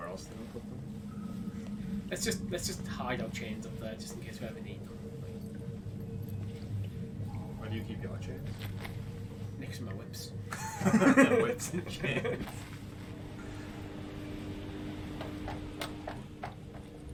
else did we put them? Let's just hide our chains up there just in case we ever need them. Where do you keep your chains? Next to my whips. Whips and chains.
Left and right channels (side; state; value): both; identical; correlation 1.00